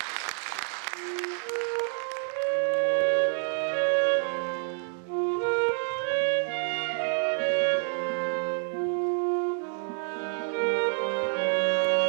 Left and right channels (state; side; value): silent; left; 55 dB below the other